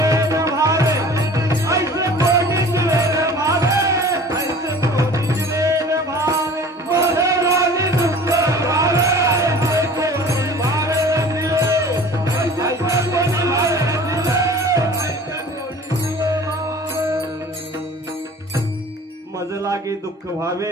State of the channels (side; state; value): both; normal; correlation 0.44